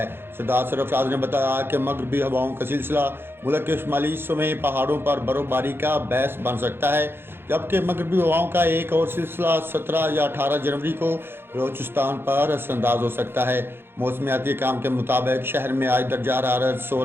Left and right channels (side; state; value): left; late; 0.11 ms